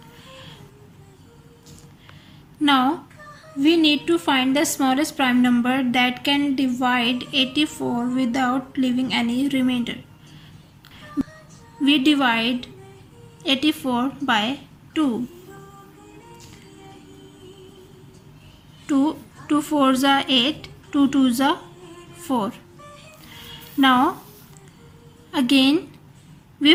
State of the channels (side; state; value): both; identical; correlation 1.00